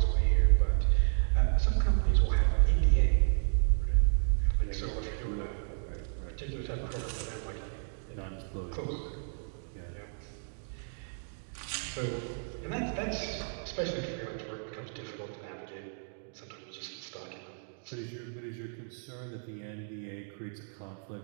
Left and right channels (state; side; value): silent; left; digital silence